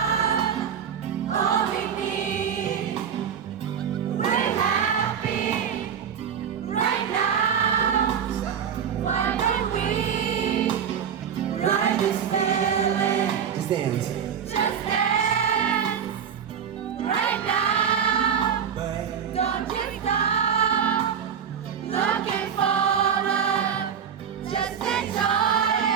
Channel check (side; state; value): left; quieter; 7.9 dB